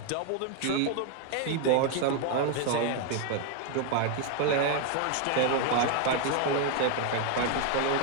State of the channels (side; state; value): both; different; correlation 0.00